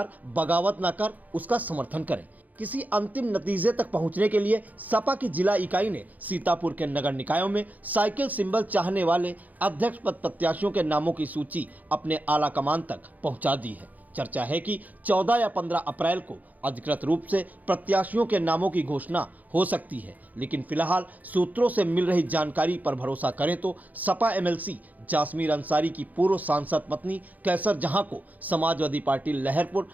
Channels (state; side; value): late; left; 0.080 ms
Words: बगावत न कर उसका समर्थन करें। किसी अंतिम नतीजे तक पहुंचने के लिए सपा की जिला इकाई ने सीतापुर के नगर निकायों में साइकिल सिंबल चाहने वाले अध्यक्ष पद प्रत्याशियों के नामों की सूची अपने आला कमान तक पहुंचा दी है। चर्चा है कि 14 या 15 अप्रैल को अधिकृत रूप से प्रत्याशियों के नामों की घोषणा हो सकती है, लेकिन फिलहाल सूत्रों से मिल रही जानकारी पर भरोसा करें तो सपा एमएलसी जासमीर अंसारी की पूर्व सांसद पत्नी कैसर जहां को समाजवादी पार्टी लहरपुर